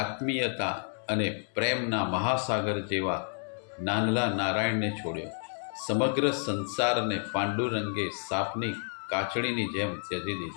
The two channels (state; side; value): silent; right; 58 dB below the other